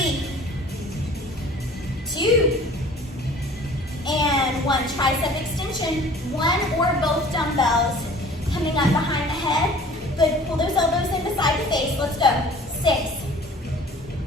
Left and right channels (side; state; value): both; normal; correlation 0.48